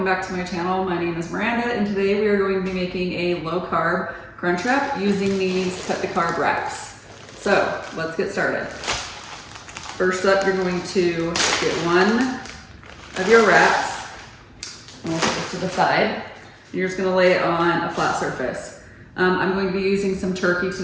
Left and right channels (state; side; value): identical; both; correlation 1.00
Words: back to my channel. My name is Miranda and today we are going to be making a low carb crunch wrap using these Cut the Carb wraps. So let's get started. First up, you're going to get one of your wraps and we'll put this to the side. You're just gonna lay it on a flat surface. I'm going to be using some turkey